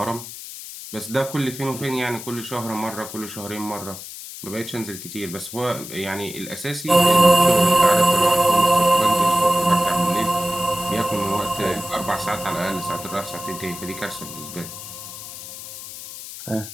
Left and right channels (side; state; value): left; noise; hiss, 12 dB below the sound